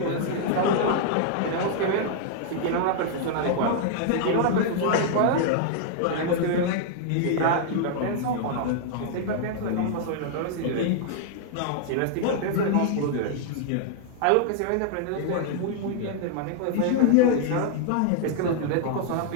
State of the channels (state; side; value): different; both; correlation -0.01